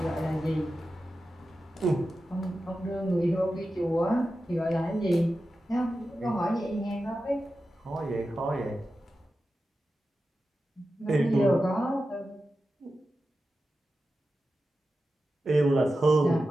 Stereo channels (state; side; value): normal; both; correlation 0.92